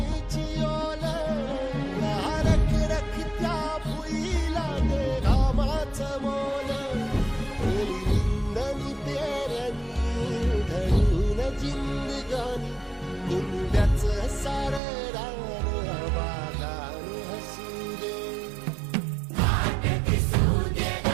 ओल, या रख रखत्या भुईला दे घामाचं मोल. निंदनी पेरणी धरून जिंदगानी, कुंड्याचं सारं रान आबादान हसू दे.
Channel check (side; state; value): left; drops out; at 14.8 s